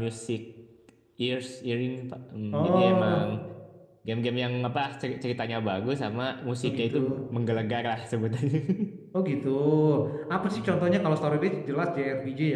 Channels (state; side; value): identical; both; correlation 1.00